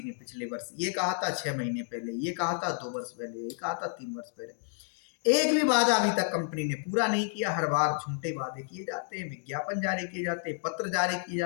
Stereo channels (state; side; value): silent; right; 56 dB below the other